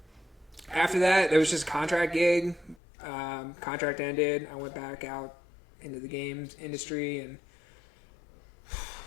that, there was just a contract gig. Contract ended. I went back out into the games industry, and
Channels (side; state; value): right; drops out; at 2.8 s